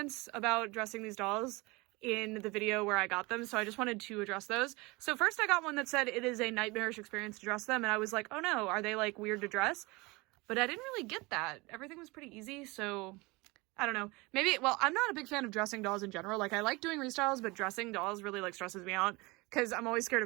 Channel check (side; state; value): left; quieter; 24.6 dB